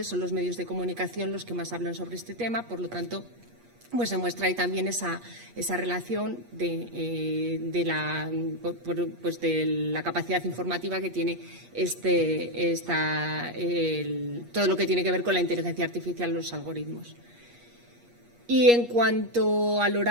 son los medios de comunicación los que más hablan sobre este tema, por lo tanto, pues se muestra ahí también esa relación de la capacidad informativa que tiene todo lo que tiene que ver con la inteligencia artificial, los algoritmos. Y en cuanto al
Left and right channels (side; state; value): left; late; 8.4 ms